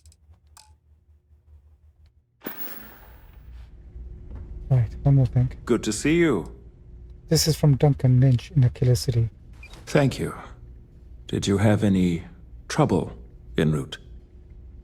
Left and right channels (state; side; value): identical; both; correlation 1.00